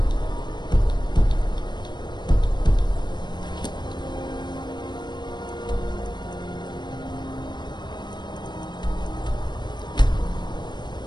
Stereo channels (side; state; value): right; late; 0.21 ms